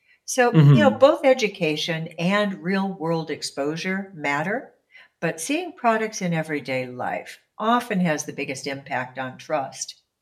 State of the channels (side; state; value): both; identical; correlation 1.00